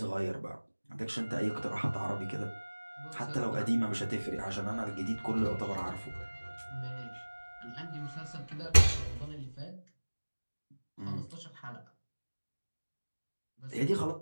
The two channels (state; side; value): inverted; both; correlation -1.00